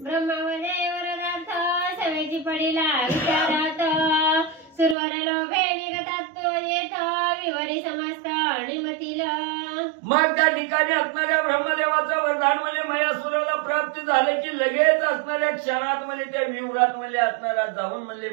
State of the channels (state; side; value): drops out; left; at 5.0 s